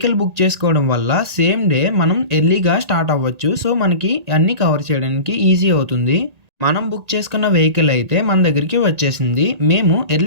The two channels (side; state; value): left; late; 1.8 ms